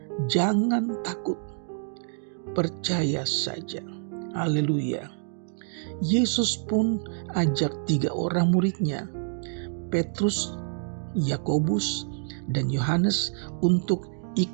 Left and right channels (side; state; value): left; silent; 60 dB below the other